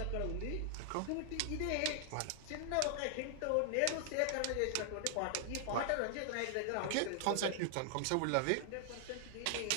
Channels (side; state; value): both; different; correlation 0.00